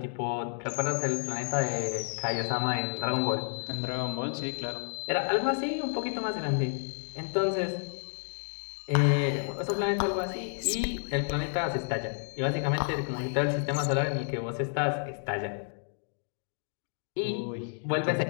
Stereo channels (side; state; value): right; silent; 57 dB below the other